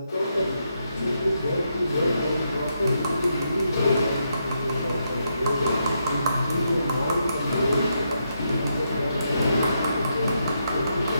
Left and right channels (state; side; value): inverted; both; correlation -0.81